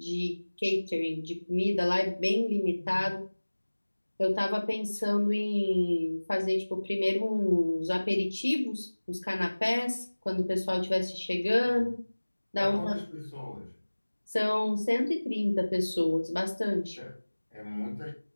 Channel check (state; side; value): inverted; both; correlation -1.00